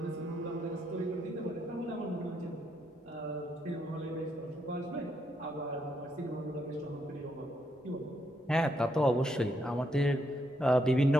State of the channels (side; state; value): both; normal; correlation 0.77